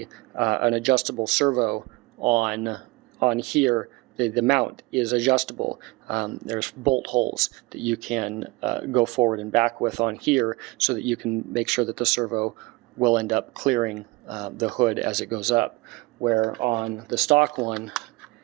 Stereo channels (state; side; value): quieter; left; 23.4 dB